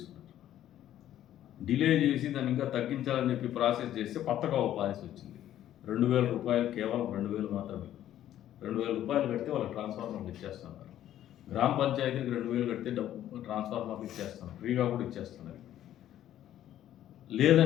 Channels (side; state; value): right; quieter; 12.0 dB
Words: డిలే చేసి దాన్ని ఇంకా తగ్గించాలని చెప్పి ప్రాసెస్ చేస్తే కొత్తగా ఒక పాలసీ వచ్చింది. ₹2,000, కేవలం 2,000 మాత్రమే. ₹2,000 కడితే వాళ్ళకి ట్రాన్స్ఫార్మర్లు ఇచ్చేస్తున్నారు. గ్రామ పంచాయతీకి 2,000 కడితే ట్రాన్స్ఫార్మర్లు ఇచ్చేస్తున్నారు, ఫ్రీగా కూడా ఇచ్చేస్తున్నారు.